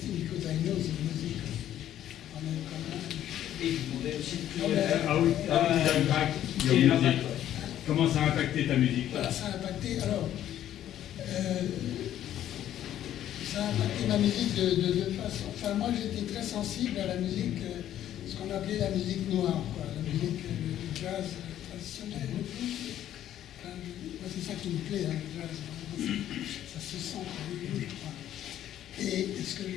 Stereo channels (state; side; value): quieter; right; 11.7 dB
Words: because I know the music of Et je demandais aussi How it impact your music? Comment ça a impacté ta musique? Voilà, ça a impacté, alors, ça a impacté ma musique de deux façons. Enfin, moi, j'étais très sensible à la musique, ce qu'on appelait la musique noire, quoi, la musique du jazz traditionnel, le blues. Enfin, moi, c'est ça qui me plaît, le jazz. Ça se sent dans le blues, je crois. Et ce que je